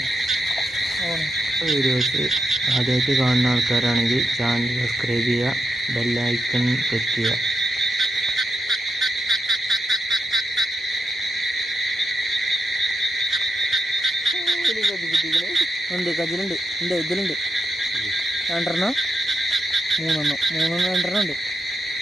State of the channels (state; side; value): normal; both; correlation 0.85